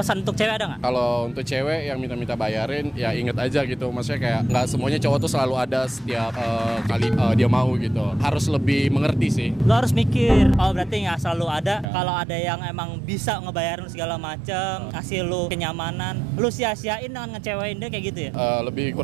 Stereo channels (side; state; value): left; drops out; at 11.9 s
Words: untuk cewek ada nggak? Kalau untuk cewek yang minta bayarin, ya inget aja gitu. Maksudnya kayak nggak semuanya cowok tuh selalu ada setiap kali dia mau gitu. Harus lebih mengerti sih. Lu harus mikir. Oh, berarti nggak selalu ada. Kalau ada yang emang bisa ngebayarin segala macam, ngasih lu kenyamanan, lu sia-siain dengan ngecewain dia kayak gitu ya? Lebih